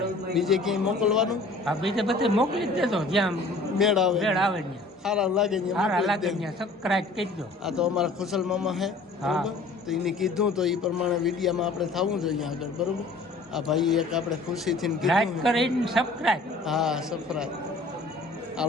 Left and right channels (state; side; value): quieter; right; 3.1 dB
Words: બીજે ક્યાંય મોકલવાનું? બીજે બધે મોકલી જ દેજો, જ્યાં મેળ આવે ને સારા લાગે સબસ્ક્રાઇબ કરી દો. આ તો અમારા ખુશાલ મામા છે બરોબર, તો એને કીધું તો એ પ્રમાણે વિડીયામાં આપણે થવું જોઈએ આગળ બરોબર. આ ભાઈ એક આપણે ખુશીથી લાઈક કીધું. કરીને સબસ્ક્રાઇબ. હા સબસ્ક્રાઈબ.